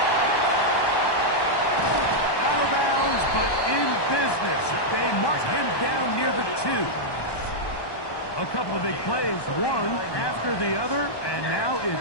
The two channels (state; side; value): late; right; 1.2 ms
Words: Out of bounds, but in business. They mark him down near the 2. A couple of big plays, one after the other, and now